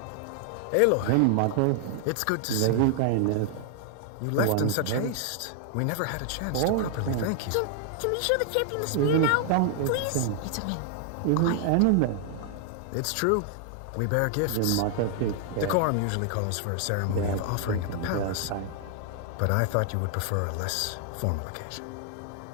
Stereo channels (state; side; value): different; both; correlation 0.00